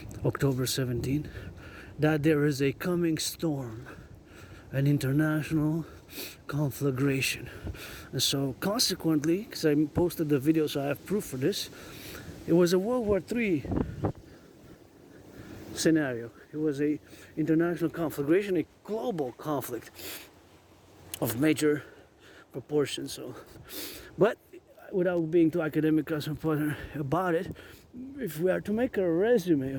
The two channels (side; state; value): both; identical; correlation 1.00